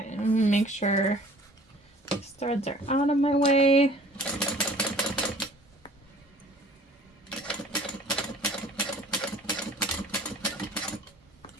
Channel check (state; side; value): normal; both; correlation 0.51